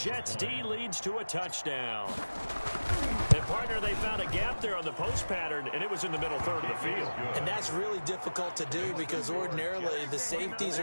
D leads to a touchdown. And, partner, they found a gap there on the post pattern, and it was in the middle third of the field. And that's really difficult to do because ordinarily the safeties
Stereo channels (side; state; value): both; inverted; correlation -1.00